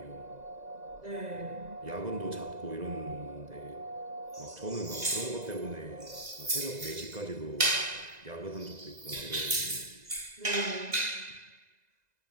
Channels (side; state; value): left; late; 2.0 ms